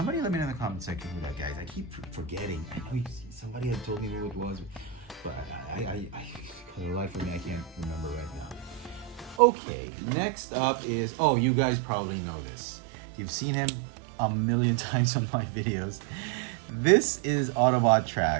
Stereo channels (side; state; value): left; drops out; at 9.4 s